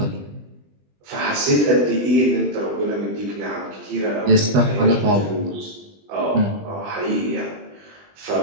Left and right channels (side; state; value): left; late; 20 ms